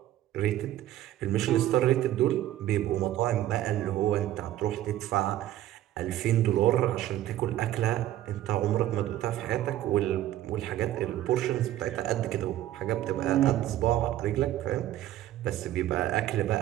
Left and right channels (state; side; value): quieter; left; 13.4 dB